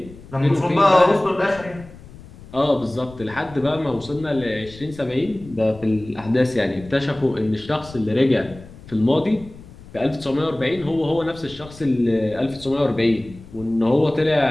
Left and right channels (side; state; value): left; noise; rumble, 19 dB below the sound